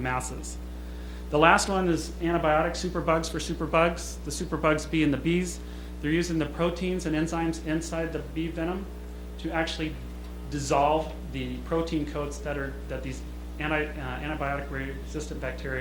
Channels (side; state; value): both; identical; correlation 1.00